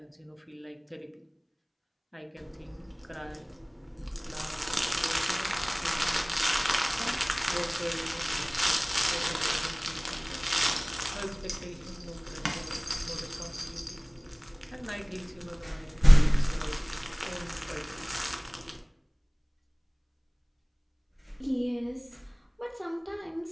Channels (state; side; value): identical; both; correlation 1.00